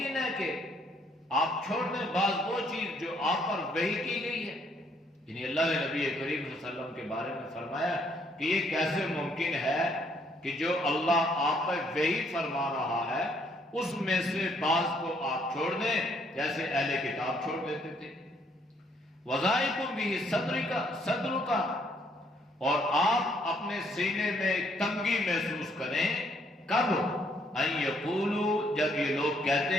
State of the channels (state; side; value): normal; both; correlation 0.68